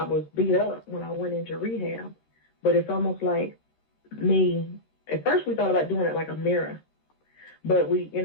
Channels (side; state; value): right; late; 13 ms